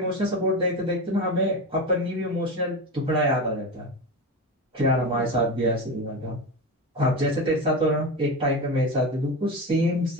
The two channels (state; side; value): normal; both; correlation 0.22